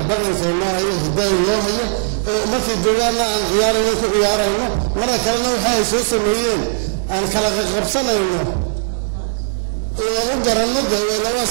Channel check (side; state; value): left; silent; digital silence